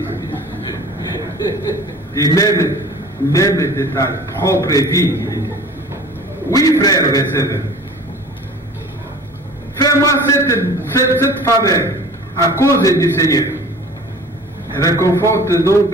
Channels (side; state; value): both; normal; correlation 0.44